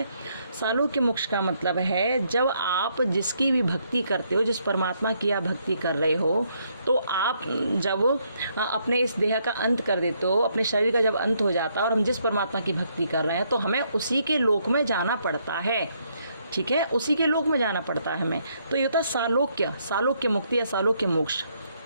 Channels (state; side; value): inverted; both; correlation -0.73